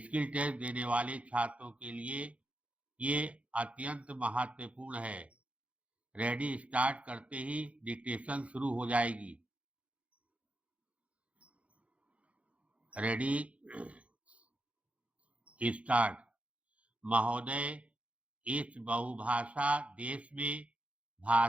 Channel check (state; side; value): late; left; 0.064 ms